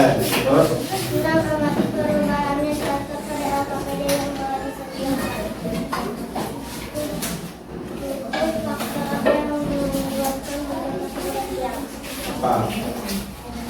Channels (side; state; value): both; identical; correlation 1.00